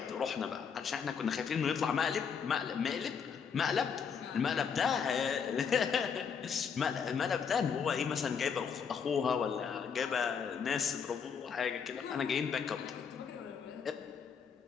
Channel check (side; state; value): right; quieter; 6.7 dB